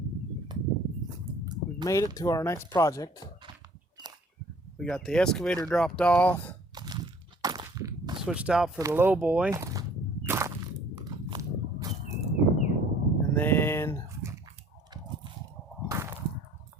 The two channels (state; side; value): normal; both; correlation 0.54